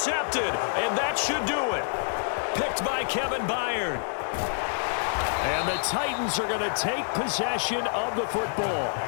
and that should do it. Picked by Kevin Byard. And the Titans are going to take possession of the football.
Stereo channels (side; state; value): right; silent; digital silence